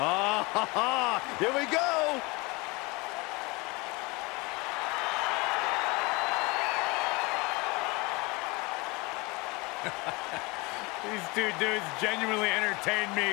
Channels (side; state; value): right; quieter; 25.7 dB